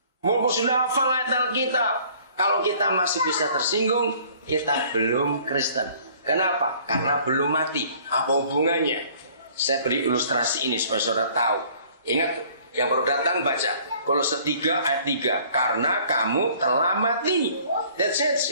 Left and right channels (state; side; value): inverted; both; correlation -0.55